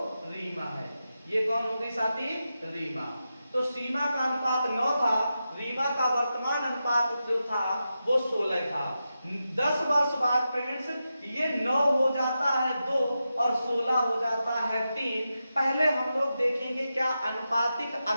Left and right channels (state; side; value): inverted; both; correlation -0.90